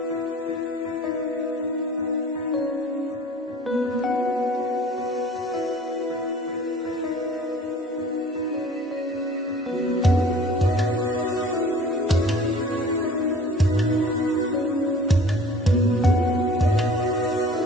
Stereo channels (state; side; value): normal; both; correlation 0.47